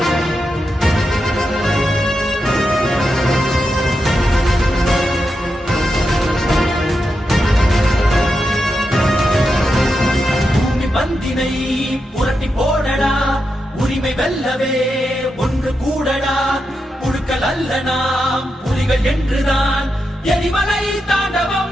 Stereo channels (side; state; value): both; normal; correlation 0.87